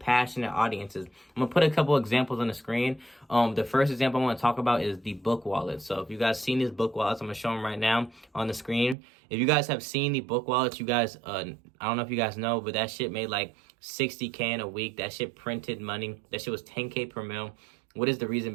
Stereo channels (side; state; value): left; drops out; at 9.0 s